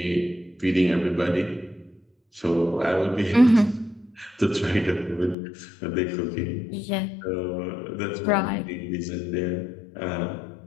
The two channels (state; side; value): drops out; right; at 5.4 s